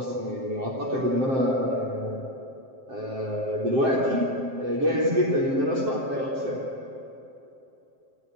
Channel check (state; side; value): late; left; 7.6 ms